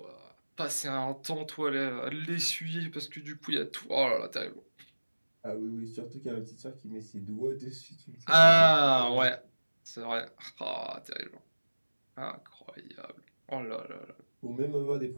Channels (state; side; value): inverted; both; correlation -1.00